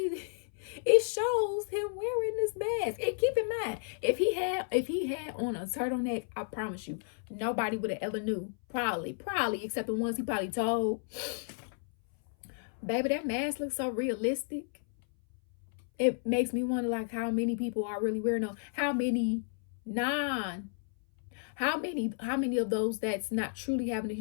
it shows him wearing this mask. And keep in mind, if he had on a turtleneck, I promise you, nobody would have ever knew. Probably, except the ones he probably told. Baby, that mask looks so realistic. It makes me wonder, like, how many people are really wearing them. How many of those that's not truly having a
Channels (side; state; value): right; silent; 56 dB below the other